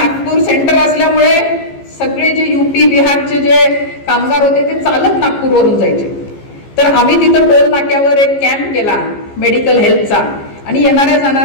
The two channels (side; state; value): right; late; 15 ms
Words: सेंटर असल्यामुळे सगळे जे UP बिहारचे जे कामगार होते ते चालत नागपूरवरून जायचे. तर आम्ही तिथं टोल नाक्यावर एक कॅम्प केला मेडिकल हेल्थचा आणि येणाऱ्या